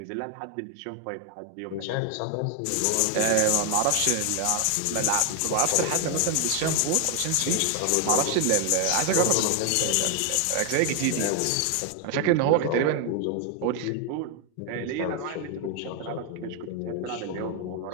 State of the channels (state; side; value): different; both; correlation 0.01